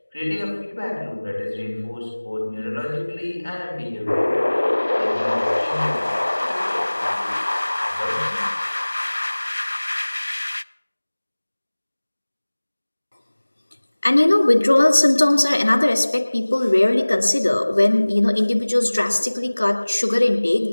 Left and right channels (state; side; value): inverted; both; correlation -1.00